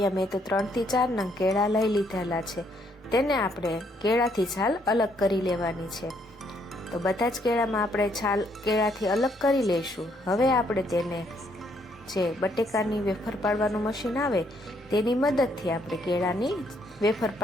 મેં તો 3 થી 4 નંગ કેળા લઈ લીધેલા છે। તેને આપણે કેળાથી છાલ અલગ કરી લેવાની છે। તો બધા જ કેળામાં આપણે છાલ કેળાથી અલગ કરી લઈશું। હવે આપણે તેને જે બટેકાની વેફર પાડવાનું મશીન આવે તેની મદદથી આપણે કેળાની વેફર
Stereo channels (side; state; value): both; normal; correlation 0.70